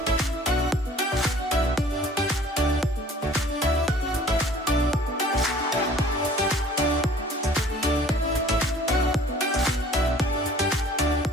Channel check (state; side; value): normal; both; correlation 0.52